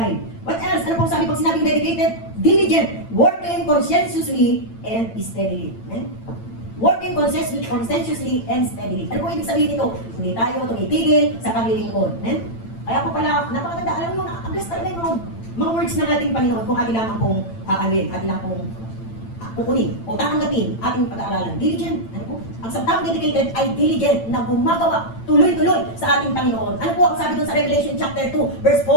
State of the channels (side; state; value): right; late; 8.9 ms